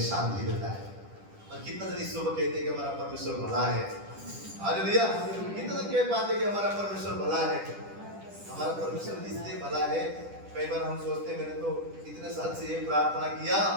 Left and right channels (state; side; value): late; left; 10 ms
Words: शांति देता है। और कितना जन इस सुबह कहते हैं कि हमारा परमेश्वर भला है। हालेलुया। कितना जन कह पाते हैं कि हमारा परमेश्वर भला है। हमारा परमेश्वर इसलिए भला है, कई बार हम सोचते हैं मैंने तो इतने साल से ये प्रार्थना किया,